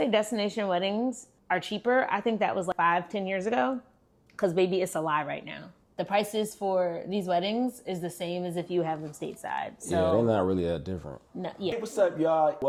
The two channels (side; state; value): both; identical; correlation 1.00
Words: destination weddings are cheaper. I think that was like 5-10 years ago, because baby, it's a lie right now. The prices for these weddings is the same as if you have them stateside. So yeah, they're not really that different. No, yeah. Hey, what's up, y'all?